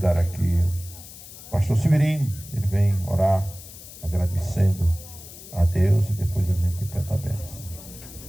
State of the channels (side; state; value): left; noise; hiss, 16 dB below the sound